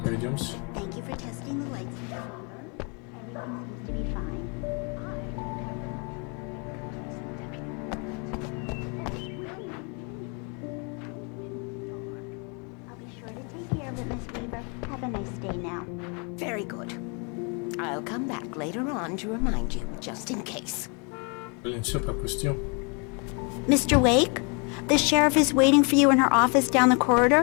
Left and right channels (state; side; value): quieter; right; 34.7 dB